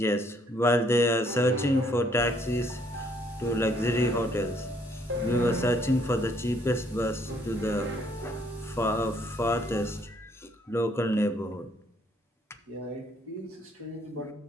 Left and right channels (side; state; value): both; normal; correlation 0.66